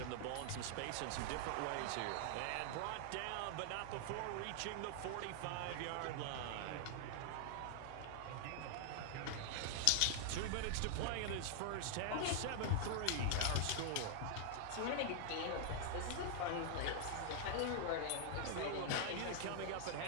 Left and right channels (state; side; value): different; both; correlation 0.00